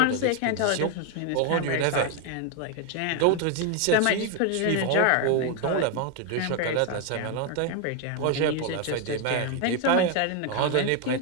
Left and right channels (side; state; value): both; different; correlation 0.01